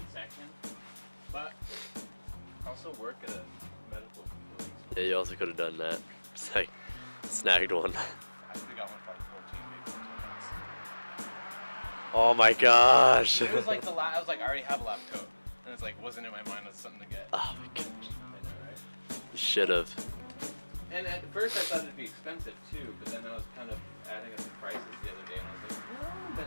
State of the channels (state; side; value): inverted; both; correlation -1.00